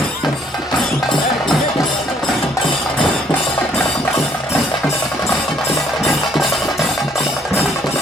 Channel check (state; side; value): normal; both; correlation 0.65